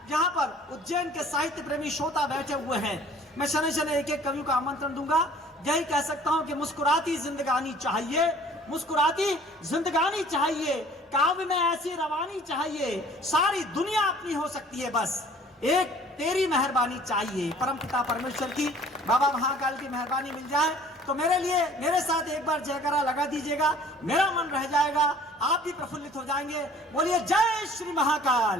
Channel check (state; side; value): normal; both; correlation 0.52